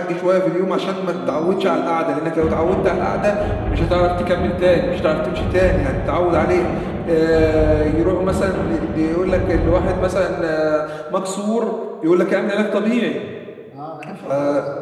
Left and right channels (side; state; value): both; identical; correlation 1.00